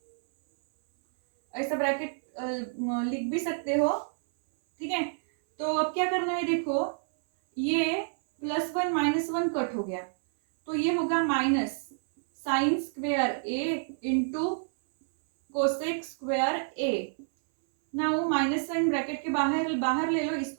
ऐसा ब्रैकेट लिख भी सकते हो, ठीक है। तो अब क्या करना है, देखो ये प्लस 1 माइनस 1 कट हो गया, तो ये होगा minus sine square A into cosec square A. Now minus sign bracket के बाहर ले लो,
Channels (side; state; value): left; silent; 58 dB below the other